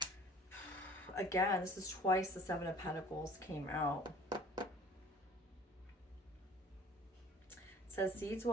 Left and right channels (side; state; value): both; normal; correlation 0.50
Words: Again, this is twice the Seven of Pentacles came out. It says seeds